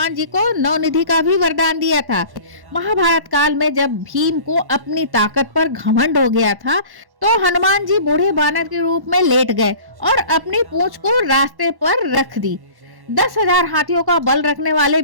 जी को नवनिधि का भी वरदान दिया था। महाभारत काल में जब भीम को अपनी ताकत पर घमंड हो गया था तो हनुमान जी बूढ़े बानर के रूप में लेट गए और अपनी पूंछ को रास्ते पर रख दी। 10,000 हाथियों का बल रखने वाले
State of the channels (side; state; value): left; late; 1.1 ms